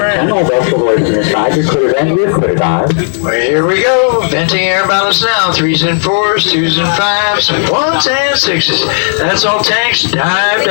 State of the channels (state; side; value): silent; right; digital silence